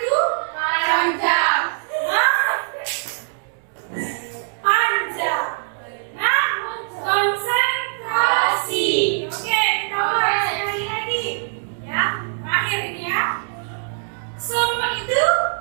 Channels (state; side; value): silent; left; digital silence